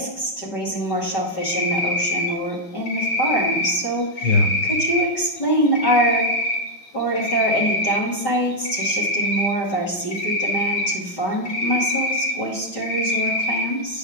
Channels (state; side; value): late; right; 5.1 ms